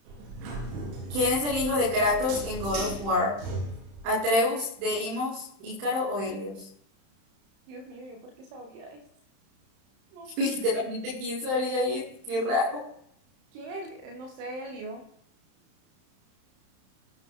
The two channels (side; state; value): left; late; 31 ms